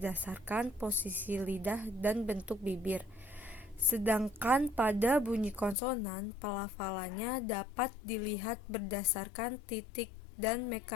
posisi lidah dan bentuk bibir. Sedangkan pada bunyi konsonan, pelafalannya dapat dilihat berdasarkan titik dan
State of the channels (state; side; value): drops out; right; at 5.8 s